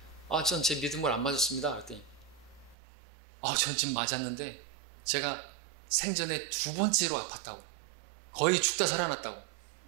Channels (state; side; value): drops out; left; at 2.8 s